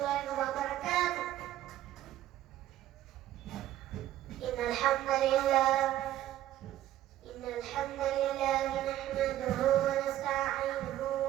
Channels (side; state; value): left; quieter; 13.2 dB